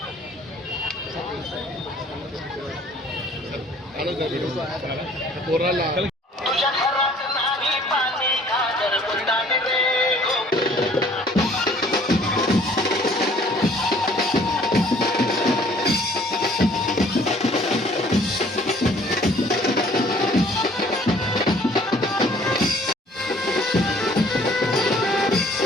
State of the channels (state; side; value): normal; both; correlation 0.56